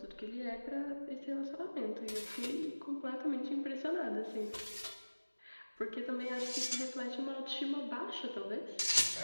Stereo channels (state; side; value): inverted; both; correlation -1.00